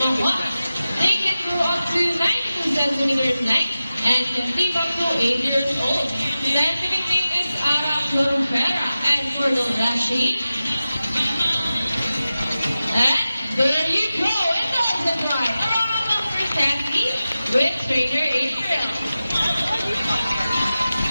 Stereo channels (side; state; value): both; inverted; correlation -0.94